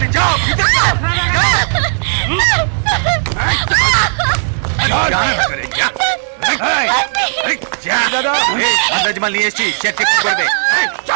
যাও, ভিতরে যাও, আন্দাজমাল নিয়ে এসছি, চেক চেক করবে,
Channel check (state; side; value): silent; left; 65 dB below the other